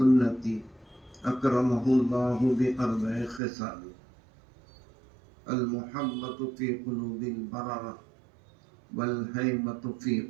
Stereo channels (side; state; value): left; drops out; at 3.4 s